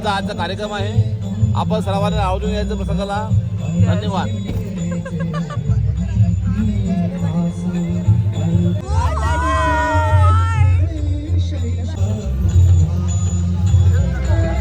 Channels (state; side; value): identical; both; correlation 1.00